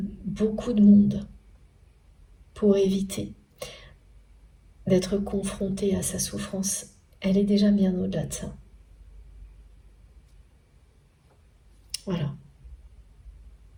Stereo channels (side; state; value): both; identical; correlation 1.00